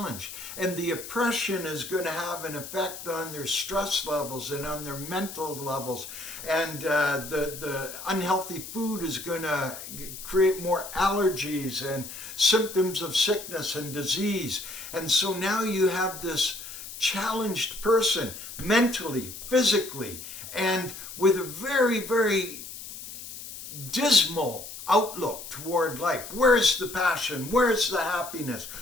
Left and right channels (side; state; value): left; noise; hiss, 11 dB below the sound